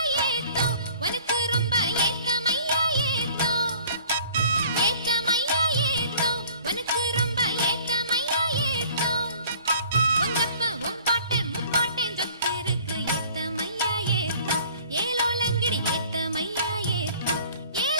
ஏத்தம் உனக்கு ரொம்ப ஏத்தமையா ஏத்தம் ஏத்தமையா ஏத்தம் உனக்கு ரொம்ப ஏத்தமையா ஏத்தம் உங்கப்ப உம்பாட்டன் முப்பாட்டன் சொத்து இருக்கு ஏத்தமையா ஏத்தம் ஏலோலங்கடி ஏத்தமையா ஏத்தம்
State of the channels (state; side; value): inverted; both; correlation -0.51